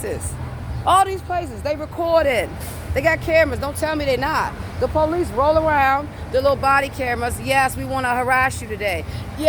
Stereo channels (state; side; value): identical; both; correlation 1.00